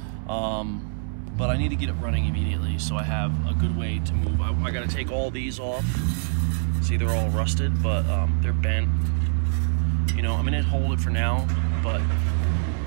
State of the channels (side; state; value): left; silent; 62 dB below the other